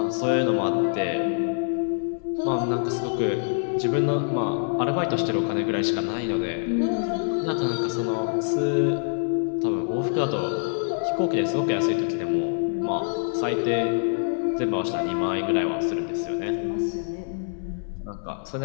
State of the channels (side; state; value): right; silent; 62 dB below the other